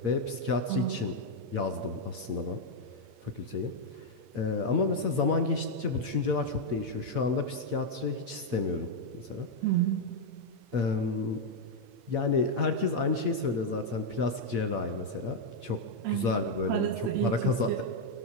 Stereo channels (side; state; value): left; late; 8.7 ms